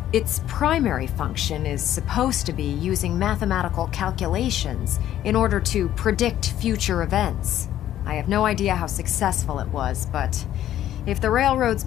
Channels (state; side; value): quieter; right; 12.1 dB